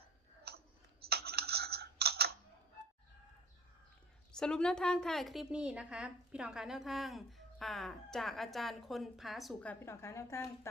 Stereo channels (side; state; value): both; normal; correlation 0.45